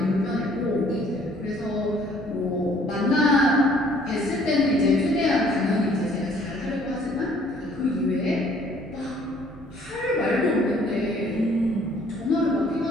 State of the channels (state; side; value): normal; both; correlation 0.59